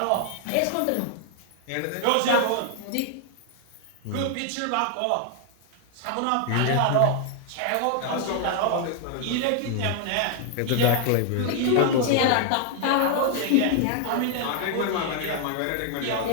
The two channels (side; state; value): both; different; correlation 0.00